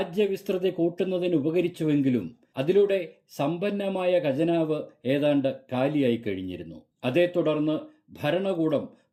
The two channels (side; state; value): both; identical; correlation 1.00